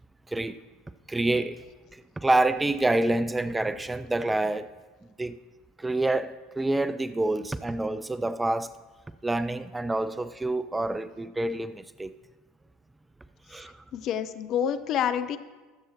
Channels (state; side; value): normal; both; correlation 0.88